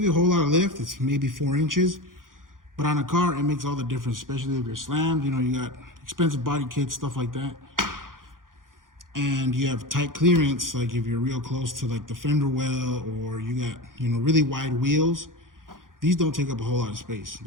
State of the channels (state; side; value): late; left; 0.90 ms